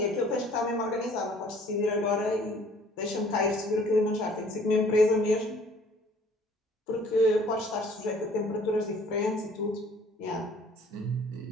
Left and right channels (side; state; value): both; normal; correlation 0.55